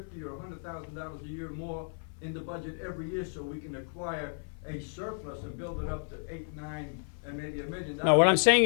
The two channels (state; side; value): silent; right; 56 dB below the other